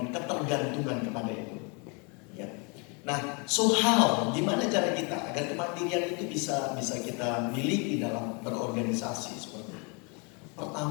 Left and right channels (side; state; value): right; quieter; 33.2 dB